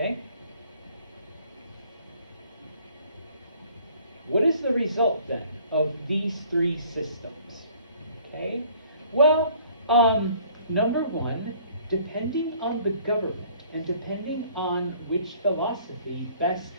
What is the result then of these three systems? Okay. Well, number one, depending on the government and depending on which philosophy best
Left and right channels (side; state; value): both; inverted; correlation -0.56